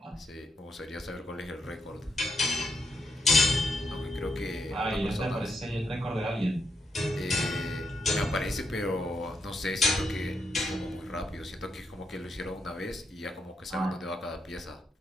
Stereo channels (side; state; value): both; normal; correlation 0.80